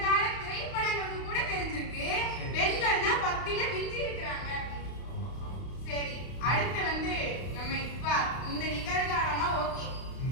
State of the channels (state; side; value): late; right; 31 ms